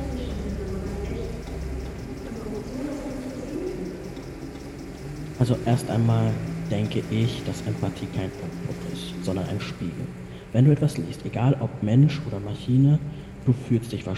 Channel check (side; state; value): both; identical; correlation 1.00